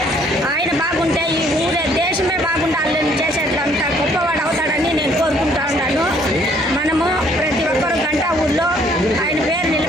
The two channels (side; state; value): both; normal; correlation 0.63